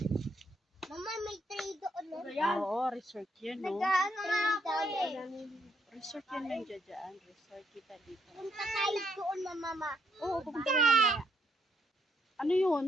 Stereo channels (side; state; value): both; normal; correlation 0.73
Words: Mama, may tray doon. Oo, resort yun, no? Nag-ano nga ako eh. Resort yun nandiyan dyan. Resort kita dito. Punta tayo doon, mama. Oo, pupunta na mamaya. Ano yun?